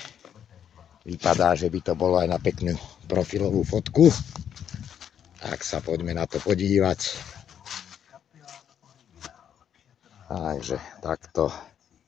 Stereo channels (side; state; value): right; quieter; 9.0 dB